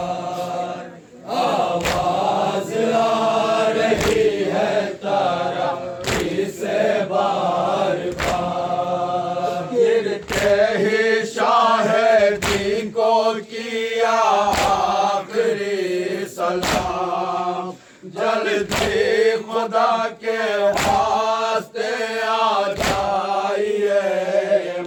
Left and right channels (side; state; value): both; identical; correlation 1.00